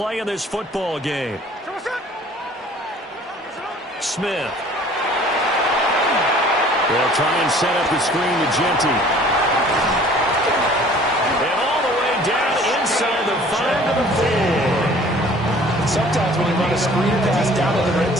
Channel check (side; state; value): both; normal; correlation 0.51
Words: in this football game. Smith. They'll try and set up the screen to Genty. Down inside the 5 to the 4. Sometimes when you run a screen pass down in the red